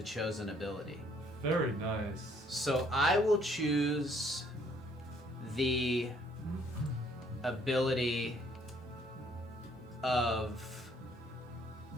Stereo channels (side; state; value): both; normal; correlation 0.64